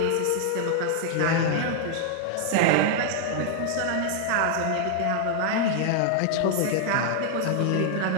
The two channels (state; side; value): different; both; correlation 0.00